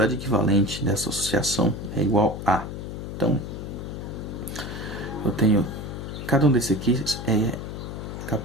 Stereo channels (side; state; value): left; noise; hum, 7 dB below the sound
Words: equivalente dessa associação é igual a. Então, eu tenho, cada um desses aqui é